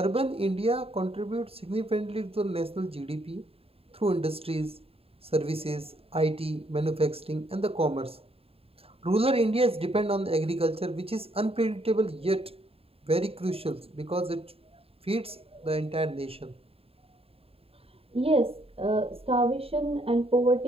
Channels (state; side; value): late; left; 0.28 ms